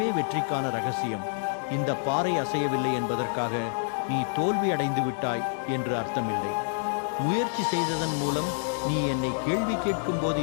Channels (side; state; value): right; silent; digital silence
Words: வெற்றிக்கான ரகசியம். இந்த பாறை அசையவில்லை என்பதற்காக நீ தோல்வி அடைந்து விட்டாய் என்று அர்த்தமில்லை. முயற்சி செய்ததன் மூலம் நீ என்னை கேள்வி கேட்கும் போது